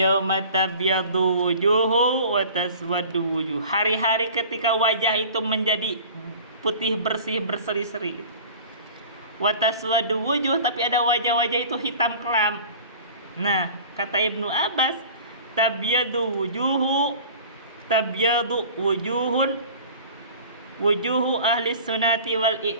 tabyadu wujuhu wa taswaddu wujuh. Hari-hari ketika wajah itu menjadi putih bersih berseri-seri gitu. Wa taswaddu wujuh, tapi ada wajah-wajah itu hitam kelam. Nah, kata Ibnu Abbas, tabyadu wujuhu ahli sunnati wal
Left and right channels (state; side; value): inverted; both; correlation -0.42